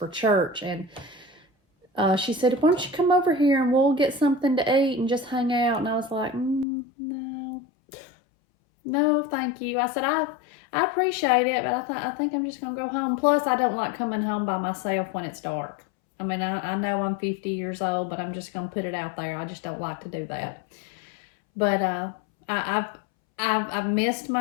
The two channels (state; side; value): drops out; right; at 6.7 s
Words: church, and she said, why don't you come over here and we'll get something to eat and just hang out? And I was like, no, thank you. I said, I appreciate it, but I think I'm just going to go home. Plus, I don't like coming home by myself when it's dark. I mean, I know I'm 50 years old, but I'm just going to put it out there. I just don't like to do that. But I've missed